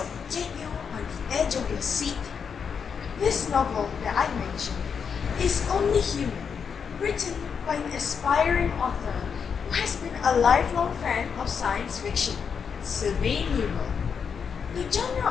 get you on the edge of your seat. This novel that I mentioned is Only Human, written by an aspiring author who has been a lifelong fan of science fiction, Sylvain Newell. The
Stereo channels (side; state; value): right; quieter; 6.6 dB